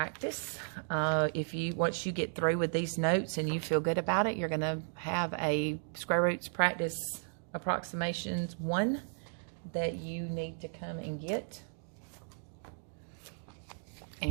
Once you get through with these notes and you feel good about it, you're going to have a square roots practice approximations 1 that you need to come and get.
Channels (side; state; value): left; silent; digital silence